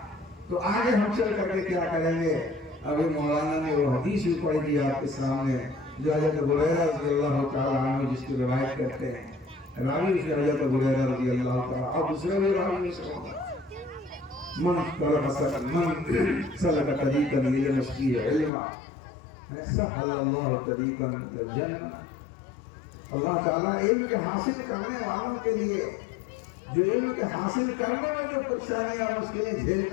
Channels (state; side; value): drops out; right; at 18.5 s